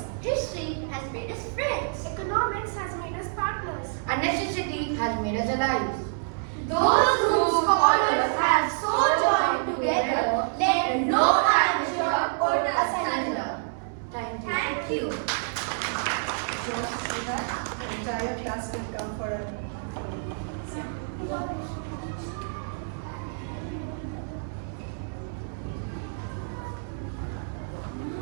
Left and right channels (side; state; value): left; silent; 60 dB below the other